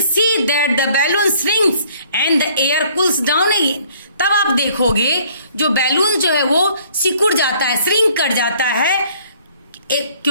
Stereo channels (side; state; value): both; inverted; correlation -0.59